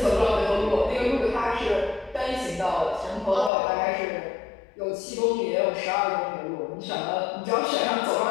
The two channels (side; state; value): right; drops out; at 3.5 s